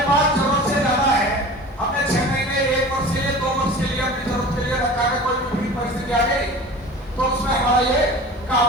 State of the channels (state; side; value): normal; both; correlation 0.38